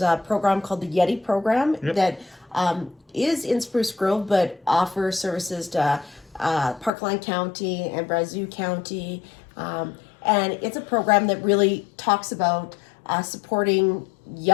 a program called the Yeti program that is in Spruce Grove, but offers services to Parkland County and Brazeau County. And it's a program that really talks about supporting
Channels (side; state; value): right; drops out; at 6.9 s